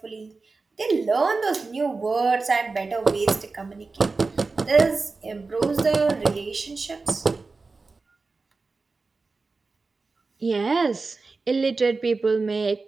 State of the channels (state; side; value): quieter; left; 4.0 dB